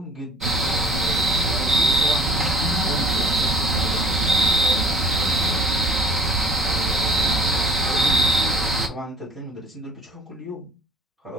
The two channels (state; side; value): normal; both; correlation 0.50